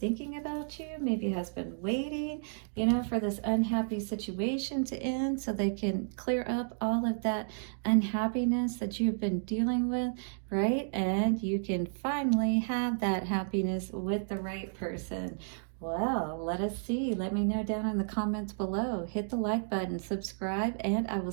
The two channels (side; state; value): left; silent; digital silence